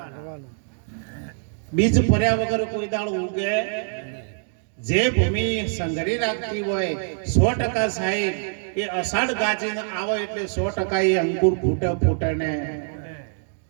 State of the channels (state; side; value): silent; left; digital silence